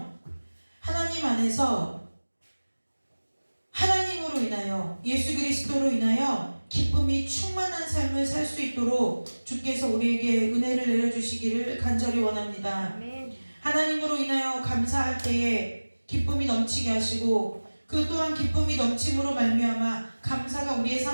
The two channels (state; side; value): inverted; both; correlation -1.00